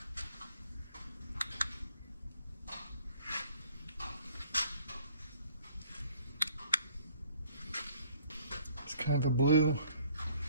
It's kind of a blue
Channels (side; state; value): both; inverted; correlation -0.59